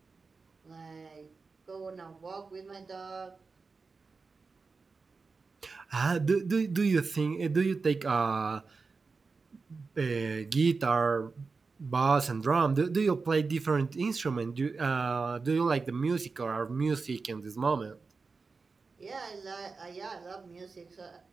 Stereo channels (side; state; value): left; quieter; 4.4 dB